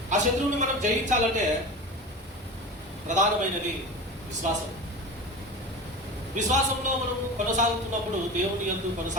ఆ శత్రువుని మనం జయించాలంటే ప్రధానమైనది విశ్వాసం. విశ్వాసంలో మనం కొనసాగుతున్నప్పుడు, దేవుని యందు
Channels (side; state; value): both; normal; correlation 0.30